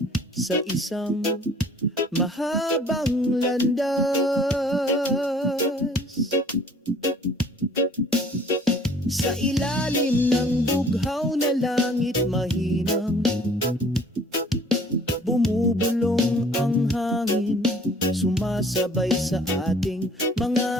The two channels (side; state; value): both; normal; correlation 0.54